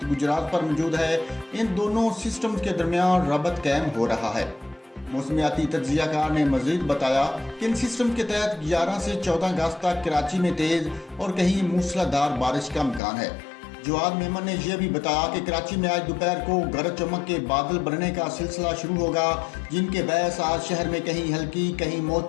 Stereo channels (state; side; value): drops out; right; at 13.0 s